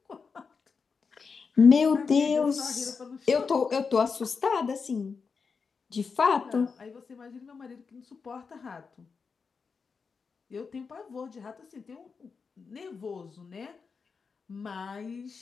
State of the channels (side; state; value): right; quieter; 5.3 dB